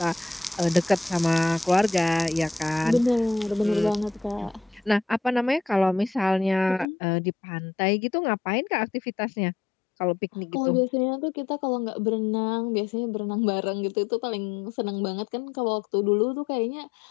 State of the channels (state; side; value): drops out; right; at 6.9 s